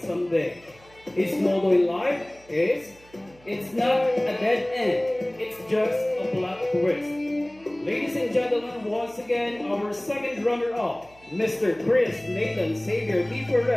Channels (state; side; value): noise; right; hum, 27 dB below the sound